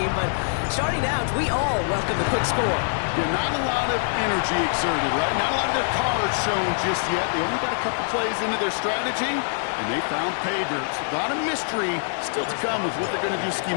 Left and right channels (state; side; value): silent; right; digital silence